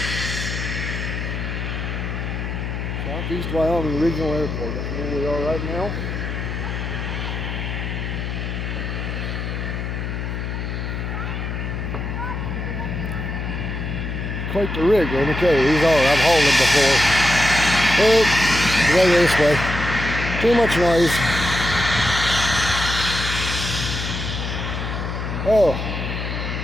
Southeast Wyoming Regional Airport. That's where we are right now. Quite the rig, let me tell you. These are. I've hauled them before. Oh, go this way. Too much noise. Oh.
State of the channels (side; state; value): left; noise; hum, 4 dB below the sound